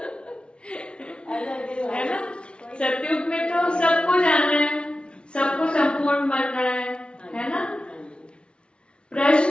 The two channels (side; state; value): right; late; 0.057 ms